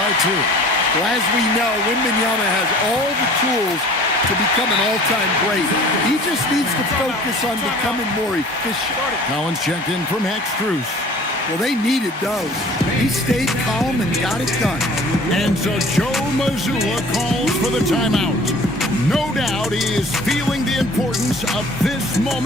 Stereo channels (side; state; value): both; normal; correlation 0.48